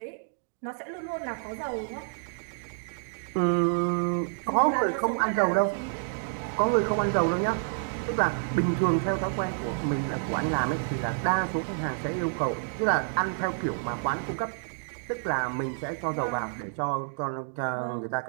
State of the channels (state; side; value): silent; left; digital silence